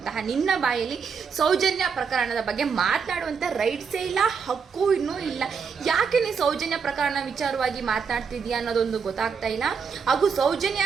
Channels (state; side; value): quieter; left; 6.0 dB